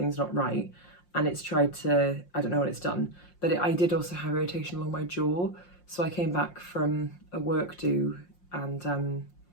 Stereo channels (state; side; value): late; right; 5.6 ms